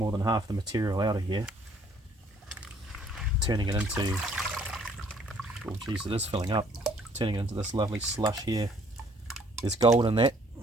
than half the material out of here, turning it into, oh geez, it is filling up, turning it into this lovely slush here. There's gold in that,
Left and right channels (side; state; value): both; normal; correlation 0.61